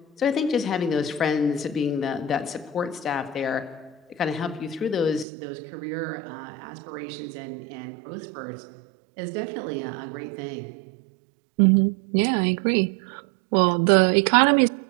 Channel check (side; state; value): left; drops out; at 5.2 s